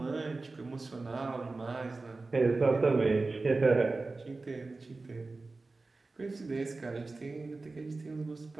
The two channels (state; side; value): quieter; left; 3.5 dB